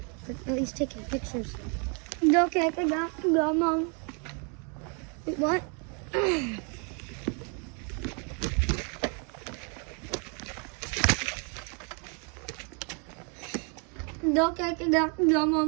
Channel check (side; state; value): left; quieter; 36.8 dB